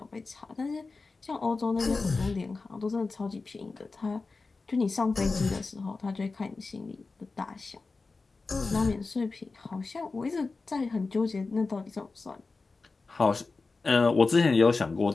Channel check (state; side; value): quieter; right; 3.9 dB